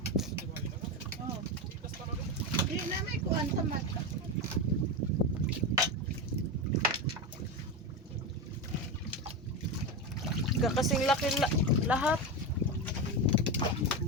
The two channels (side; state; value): both; normal; correlation 0.16